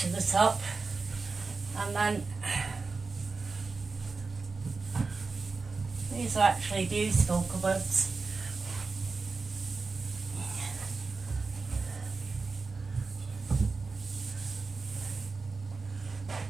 to the top, and then these are actually beautiful cupboards.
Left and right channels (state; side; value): quieter; left; 4.2 dB